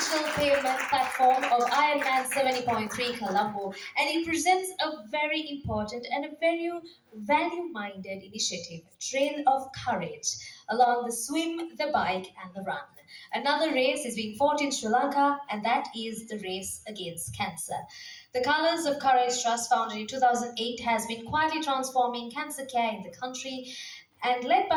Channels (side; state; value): both; identical; correlation 1.00